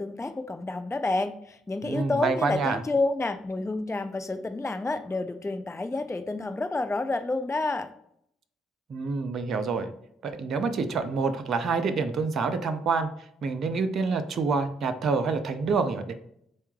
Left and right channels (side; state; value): both; normal; correlation 0.74